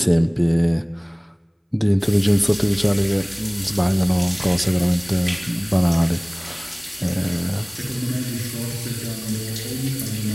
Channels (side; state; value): both; identical; correlation 1.00